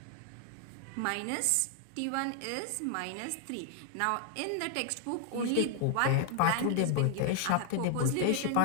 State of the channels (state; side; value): different; both; correlation 0.00